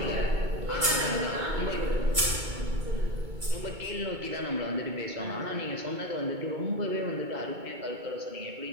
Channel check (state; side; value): late; left; 2.2 ms